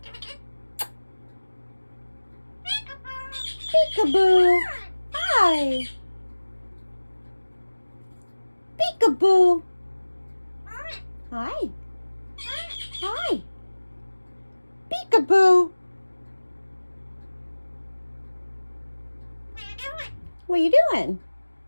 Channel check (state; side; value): inverted; both; correlation -1.00